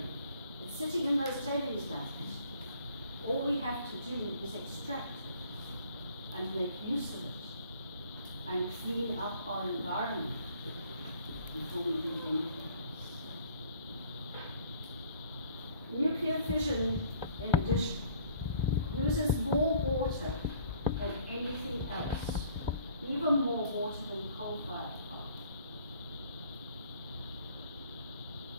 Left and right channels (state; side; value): inverted; both; correlation -0.56